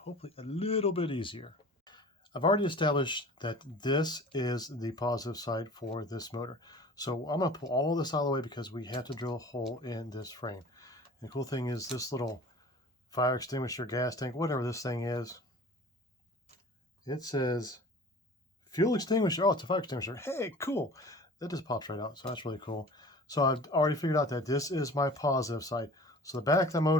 a little bit easier. I've already established that this is the positive side for this motor. So I'm going to pull all this out of the way because we have to drill a hole in this frame. And the cool thing is this little fire extinguisher, gas tank, whatever this thing is, it says fuel extinguisher. Oh, it's a fire extinguisher. Hey, cool. That just pops right out. So that's really cool. So I've already figured out that this is my positive side. So the back of the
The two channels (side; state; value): both; normal; correlation 0.42